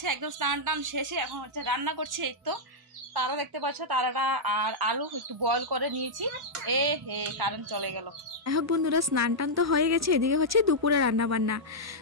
একদম স্নান টান শেষে এখন হচ্ছে রান্না করছি। এই তো তারা দেখতে পাচ্ছ, তারাটা আর আলু একটু বয়েল করে নিয়েছি। কারেন্ট চলে গেল। এখন বন্ধুরা স্নান টান তো হয়ে গেছে, এদিকে হচ্ছে দুপুরে রান্না বান্না।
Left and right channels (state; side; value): normal; both; correlation -0.08